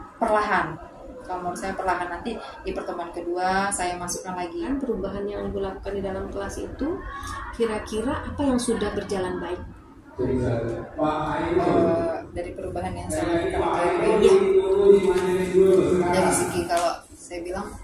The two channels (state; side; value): identical; both; correlation 1.00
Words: perlahan. Kalau menurut saya perlahan, nanti di pertemuan kedua saya masukkan lagi. Perubahan yang Ibu lakukan di dalam kelas itu kira-kira apa yang sudah berjalan baik? Dari perubahan yang saya lakukan dari segi, kalau saya bilang